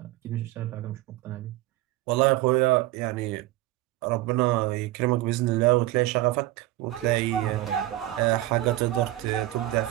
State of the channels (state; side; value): quieter; left; 16.4 dB